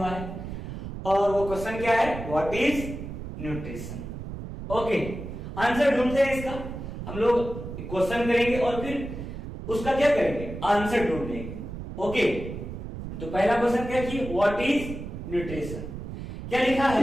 है, और वो क्वेश्चन क्या है? What is nutrition. Okay, answer ढूंढते हैं इसका। हम लोग क्वेश्चन करेंगे और फिर उसका क्या करेंगे? आंसर ढूंढेंगे। ओके, तो पहला क्वेश्चन क्या कि व्हाट इज न्यूट्रिशन। क्या लिखा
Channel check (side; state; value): right; noise; rumble, 8 dB below the sound